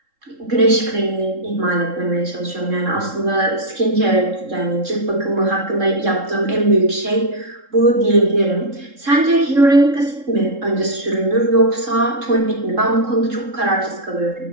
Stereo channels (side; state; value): left; late; 3.7 ms